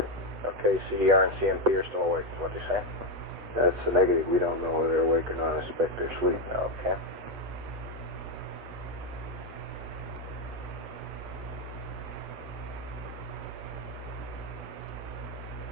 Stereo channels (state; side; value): normal; both; correlation 0.06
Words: Okay, CDR and CMP are still awake, is what they say? That's a negative. We don't know whether they're awake or not. I suspect they're asleep. Okay.